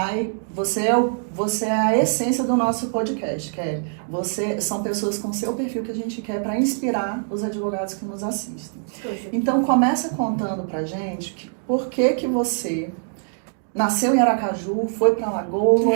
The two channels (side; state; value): left; silent; digital silence